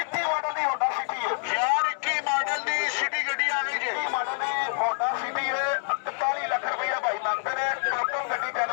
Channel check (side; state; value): right; silent; 60 dB below the other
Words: ਮਾਡਲ ਦੀ ਹੋਂਡਾ ਸਿਟੀ ਹੈ ਯਾਰ 21 ਮਾਡਲ ਦੀ ਸਿਟੀ ਗੱਡੀ ਆ ਗਈ ਜੀ 21 ਮਾਡਲ ਦੀ ਹੋਂਡਾ ਸਿਟੀ ਹੈ 41 ਲੱਖ ਰੁਪਇਆ ਭਾਈ ਮੰਗਦੇ ਨੇ ਟੋਟਲ ਗੱਡੀ